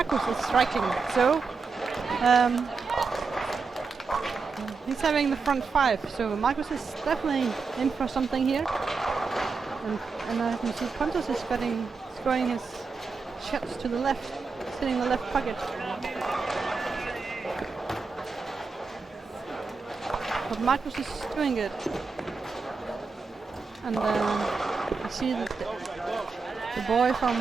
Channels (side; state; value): left; quieter; 4.7 dB